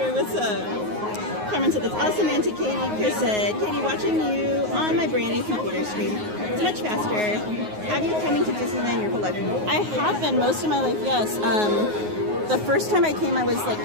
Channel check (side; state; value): left; late; 9.5 ms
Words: what's up? Carmen said, that's awesome, Auntie Katie. Chris said, Katie, watching you on my brand new computer screen. It's much faster. Have you coming to Disneyland your whole life? I have been most of my life, yes. The first time I came, I was like